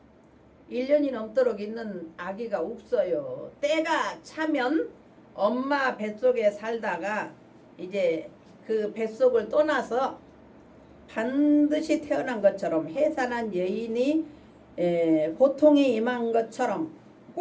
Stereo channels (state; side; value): identical; both; correlation 1.00